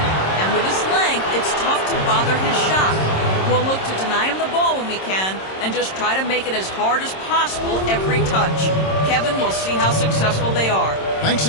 And with his length, it's tough to bother his shot. We'll look to deny him the ball when we can and just try to make it as hard as possible every touch. Kevin, we'll see how successful they are. Thanks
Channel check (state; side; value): late; right; 26 ms